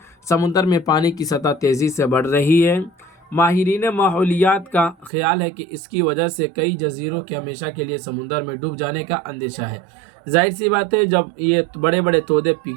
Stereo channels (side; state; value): left; drops out; at 5.1 s